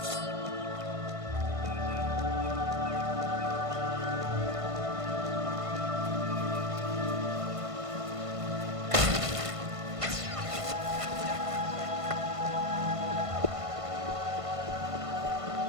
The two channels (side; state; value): left; late; 1.5 ms